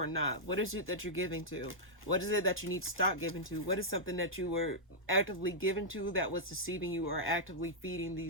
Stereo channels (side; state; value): both; normal; correlation -0.09